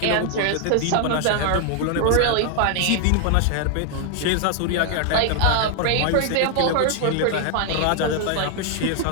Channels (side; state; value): both; different; correlation 0.00